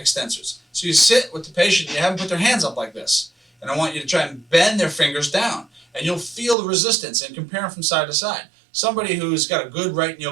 So you sit with the patient, you have them put their hands up like this, and I want you to try and bend their fingers down, and you'll feel the resistance and compare them from side to side. Somebody who's got a good right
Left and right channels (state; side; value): drops out; left; at 6.6 s